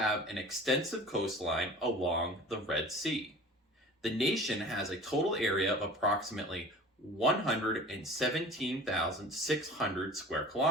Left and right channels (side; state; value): both; normal; correlation 0.41